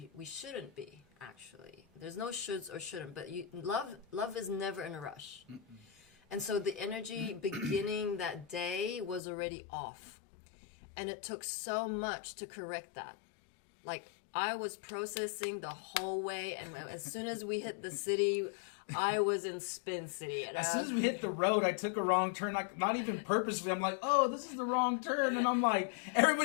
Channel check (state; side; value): drops out; right; at 9.2 s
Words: shouldn't be, actually. There's no shoulds or shouldn't. But love is never in a rush. And so the energy beginning that day was already off. And it took so much to correct that. Like, I was processing the whole way, and as soon as we hit the city, I was in Spin City. And as soon as we hit the road, I took a wrong turn, like, not even purposely. I'm like, oh, this is the wrong turn. And I'm like,